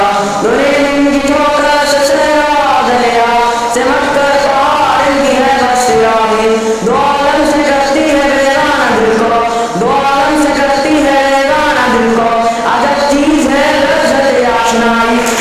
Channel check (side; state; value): both; identical; correlation 1.00